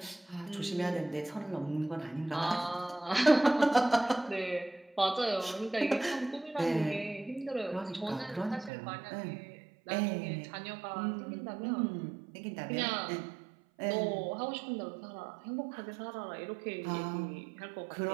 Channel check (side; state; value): left; drops out; at 8.7 s